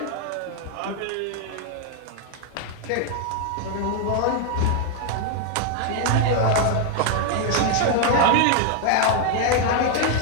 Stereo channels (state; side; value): different; both; correlation 0.00